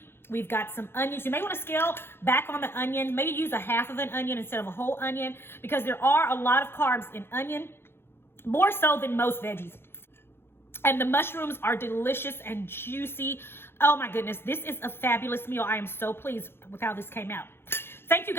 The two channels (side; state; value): right; late; 0.11 ms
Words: We've got some onions. You may want to scale back on the onion. Maybe use a half of an onion instead of a whole onion, because there are a lot of carbs in onion, more so than most veggies. And the mushrooms are delicious and juicy. Oh my goodness, this is a fabulous meal. I am so pleased with how this came out. Thank you